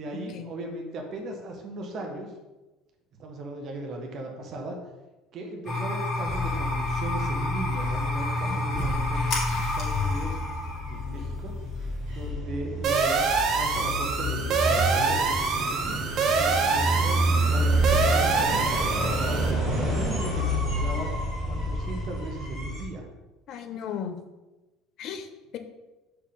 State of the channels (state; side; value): normal; both; correlation 0.59